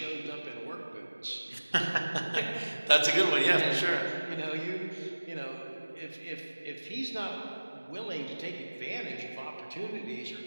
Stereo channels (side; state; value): both; inverted; correlation -1.00